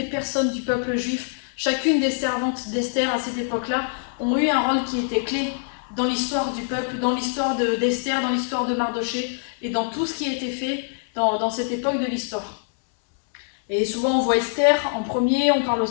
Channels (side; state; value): right; silent; digital silence